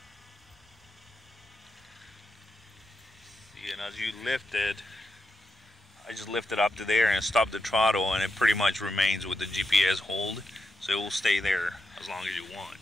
See, and as you lift it, I just lift it up to there and stop the throttle, and it pretty much remains with the GPS hold, so it will stay there as long as you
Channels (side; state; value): both; normal; correlation 0.86